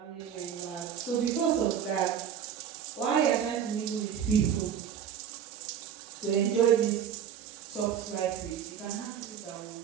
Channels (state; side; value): quieter; left; 8.8 dB